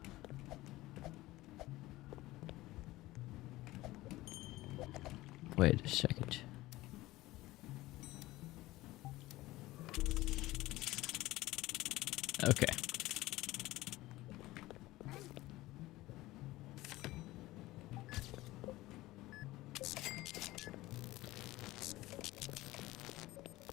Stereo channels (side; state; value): right; quieter; 18.1 dB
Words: Wait a second. Okay.